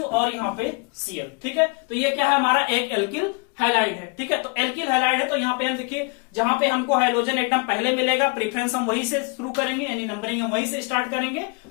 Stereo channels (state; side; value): quieter; right; 33.1 dB